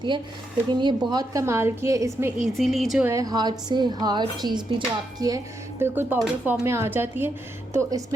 है, लेकिन ये बहुत कमाल की है। इसमें ईजीली जो है हार्ड से हार्ड चीज़ भी जो आपकी है बिल्कुल पाउडर फॉर्म में आ जाती है। तो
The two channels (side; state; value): both; normal; correlation 0.82